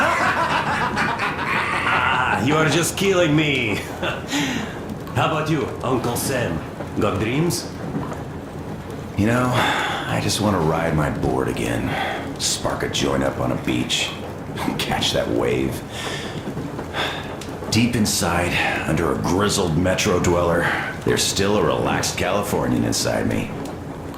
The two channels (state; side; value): identical; both; correlation 1.00